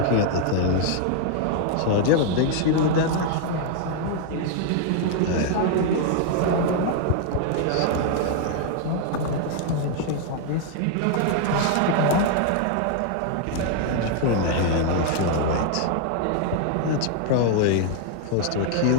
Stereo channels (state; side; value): different; both; correlation 0.00